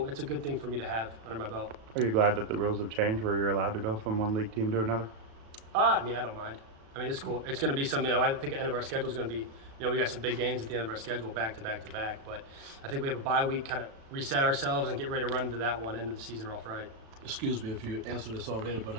good thing for me to have under my belt. Are you glad that the rules have changed where you're allowed to go from one league team to another? I mean, I don't mind. I mean, it's cool. It's going to be something, you know, I think the end of our schedule is going to be, you know, we got some big games at the end of our schedule, back to back to back. But I think we have a bye week, kind of reset ourselves and get ready to run into that one, end of the season off right. Excuse me if you answered this already, but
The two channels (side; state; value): left; late; 36 ms